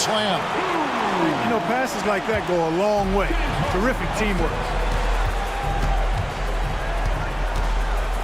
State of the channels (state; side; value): identical; both; correlation 1.00